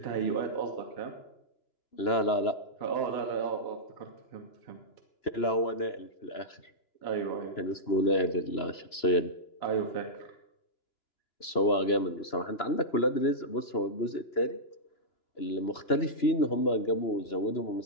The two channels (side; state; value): right; late; 2.9 ms